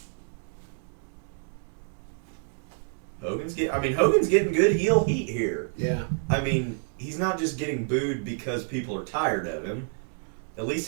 Hogan's getting good heel heat here. Yeah. I mean, he's not just getting booed because people are tired of him. At least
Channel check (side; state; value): left; silent; digital silence